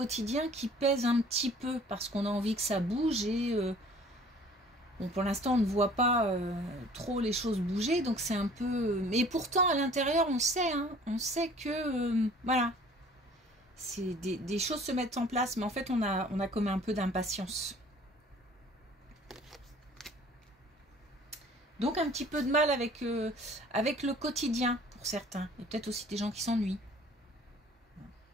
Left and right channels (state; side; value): normal; both; correlation 0.52